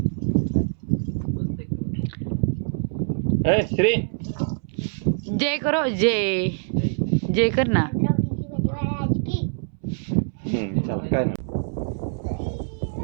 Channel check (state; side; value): silent; left; 62 dB below the other